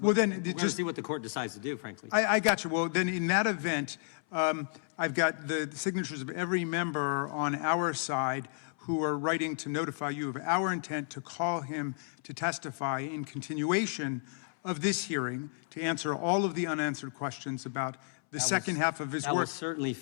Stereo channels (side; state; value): right; silent; 56 dB below the other